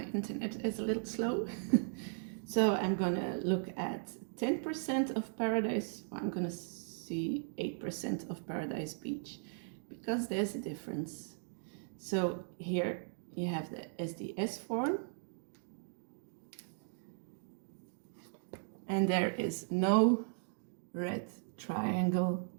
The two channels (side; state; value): left; silent; digital silence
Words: internet is a little slow. So I'm gonna look at 10% of Paradise. I'm gonna see 8% of Paradise Beach because there's a difference. So here you have the SDS form, and there is no red triangle